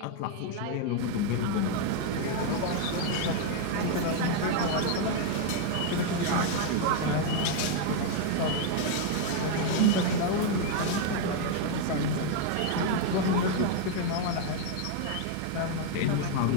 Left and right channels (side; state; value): both; different; correlation 0.00